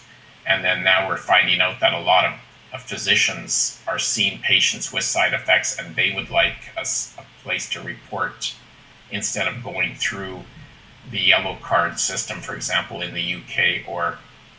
And then now we're finding out that a lot of physicians are seeing patients with side effects, and they would like a place to report instead of going through the yellow card system, for example, in the UK or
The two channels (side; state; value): both; identical; correlation 1.00